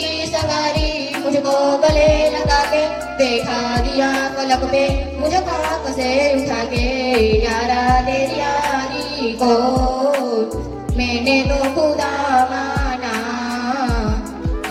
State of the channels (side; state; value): both; identical; correlation 1.00